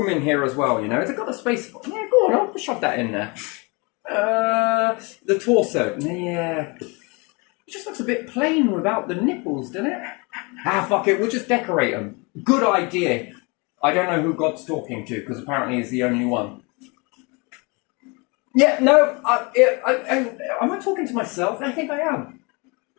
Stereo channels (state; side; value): quieter; right; 29.2 dB